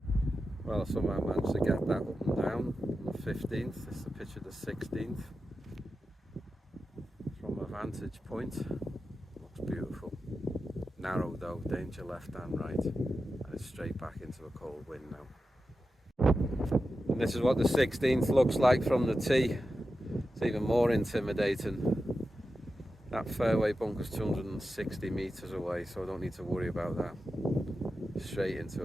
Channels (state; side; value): normal; both; correlation 0.91